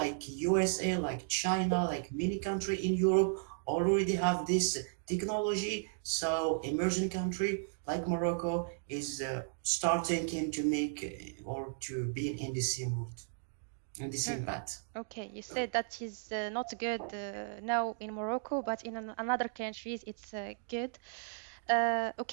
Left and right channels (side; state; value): left; silent; digital silence